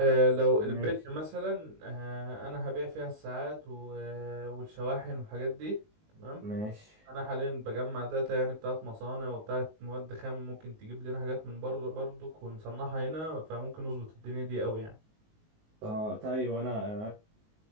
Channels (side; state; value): left; late; 19 ms